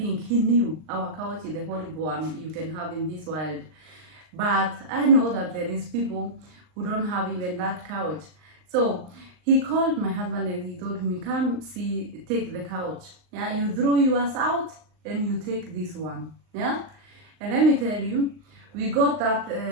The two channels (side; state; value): left; late; 39 ms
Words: he knew our couch is the horrible one you can have in this world. But I know that there is people who don't have even that couch. So he called my husband and he told me, come see, take the couch. Yeah, you throw yours out and you take this one. Yeah, and let me tell you, we got that